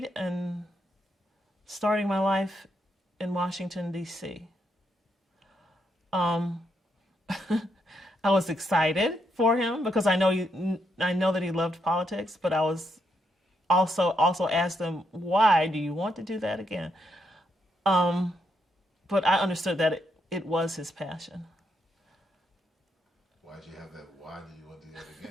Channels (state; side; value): normal; both; correlation 0.79